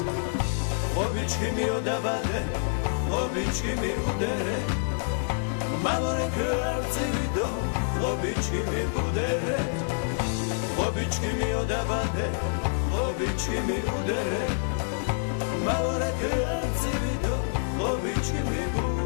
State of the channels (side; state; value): right; silent; digital silence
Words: Xobički mi odabade, xobički mi udere Malore kralci vido, xobički mi budere Xobički mi odabade, xobički mi udere Malore kralci vido, xobički mi